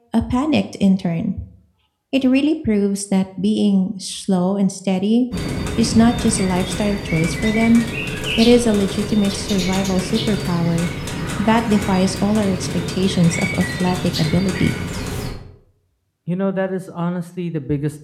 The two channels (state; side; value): identical; both; correlation 1.00